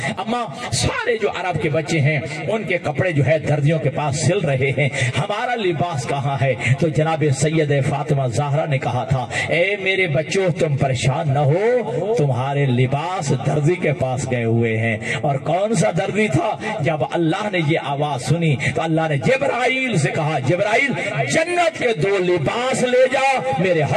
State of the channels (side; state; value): both; identical; correlation 1.00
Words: اماں سارے جو عرب کے بچے ہیں ان کے کپڑے جو ہے دردیوں کے پاس سل رہے ہیں ہمارا لباس کہاں ہے. تو جناب سید فاطمہ زہرا نے کہا تھا اے میرے بچوں تم پریشان نہ ہو تمہارے لباس درزی کے پاس گئے ہوئے ہیں. اور کون سا درزی تھا جب اللہ نے یہ آواز سنی تو اللہ نے جبرائیل سے کہا جبرائیل جنت کے 2 لباس لے جا میرے